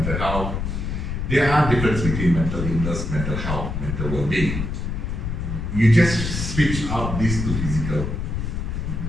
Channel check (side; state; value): left; noise; rumble, 3 dB below the sound